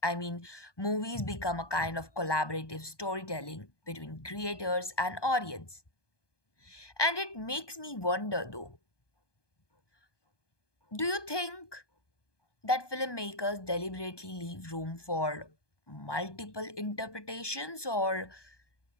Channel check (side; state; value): right; late; 1.2 ms